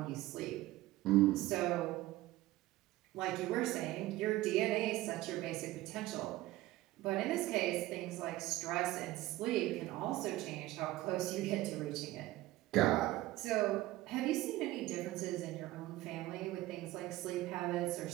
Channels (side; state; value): left; quieter; 17.1 dB